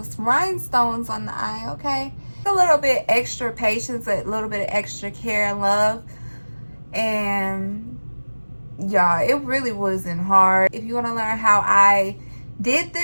rhinestones on the eye, okay? A little bit extra patience, a little bit of extra care and love, and y'all, it really wasn't hard. If you want to learn how I did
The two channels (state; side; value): inverted; both; correlation -1.00